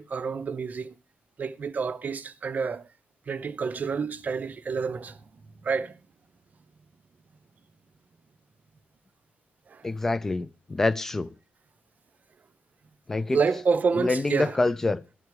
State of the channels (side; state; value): both; normal; correlation 0.87